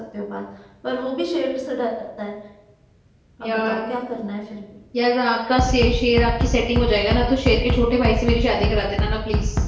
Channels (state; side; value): identical; both; correlation 1.00